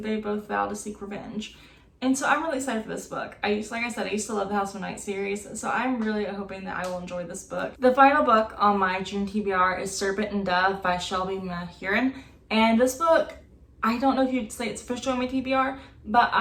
both vow to seek revenge. And so I'm really excited for this book. Like I said, I used to love the House of Night series, so I'm really hoping that I will enjoy this book. The final book on my June TBR is Serpent Dove by Shelby Mahurin. And this book, I don't know if you'd say it's officially on my TBR, but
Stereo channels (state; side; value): identical; both; correlation 1.00